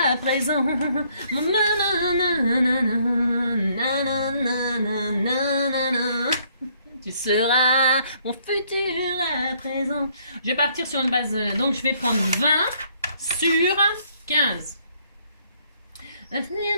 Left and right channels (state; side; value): inverted; both; correlation -0.67